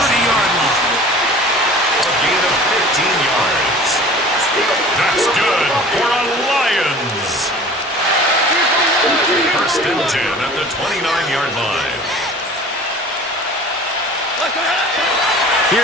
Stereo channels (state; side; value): normal; both; correlation 0.44